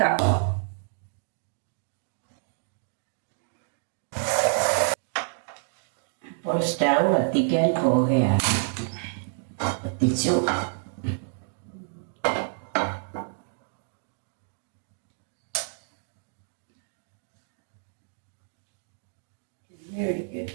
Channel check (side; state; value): left; silent; digital silence